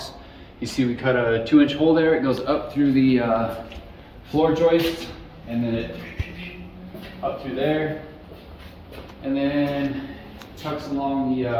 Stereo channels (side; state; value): both; identical; correlation 1.00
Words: You see we cut a 2-inch hole there. It goes up through the floor joist, and then it up through there, and then tucks along the